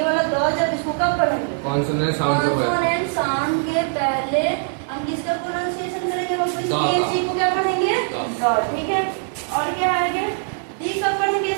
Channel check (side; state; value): left; silent; 62 dB below the other